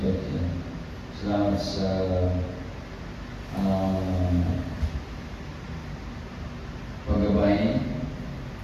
Salamat sa paggabay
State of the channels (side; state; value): both; identical; correlation 1.00